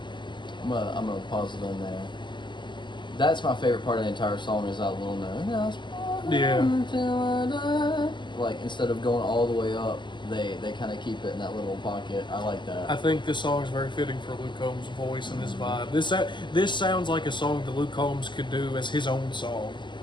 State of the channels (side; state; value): right; late; 0.22 ms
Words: I'm gonna pause it on there. That's my favorite part of the entire song is that little note. Yeah. Like instead of going all the way up, they kind of keep it in that little pocket. I like that. I think this song is very fitting for Luke Combs' voice and his vibe. This sounds like a song that Luke Combs could do as his own song,